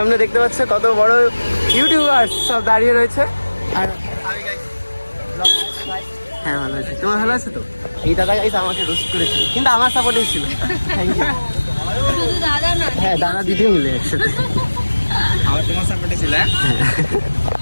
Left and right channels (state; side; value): inverted; both; correlation -1.00